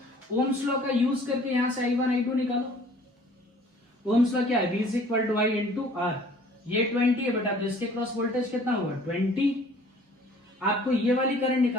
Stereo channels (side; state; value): both; normal; correlation 0.53